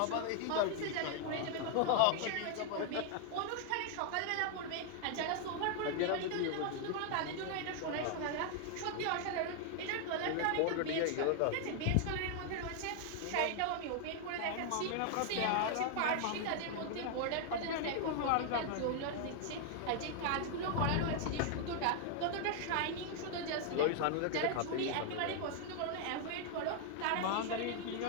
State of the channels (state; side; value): different; both; correlation 0.00